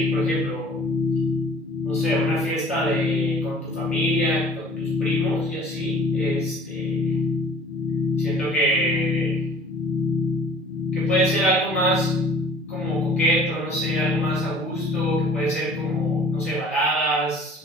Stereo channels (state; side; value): normal; both; correlation 0.50